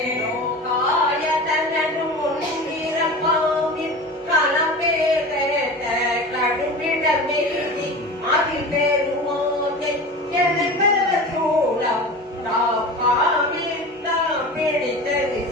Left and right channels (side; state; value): both; normal; correlation 0.32